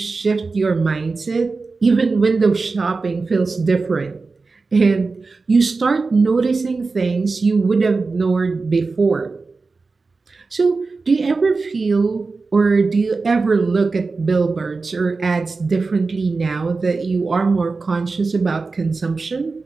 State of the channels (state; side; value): quieter; left; 4.1 dB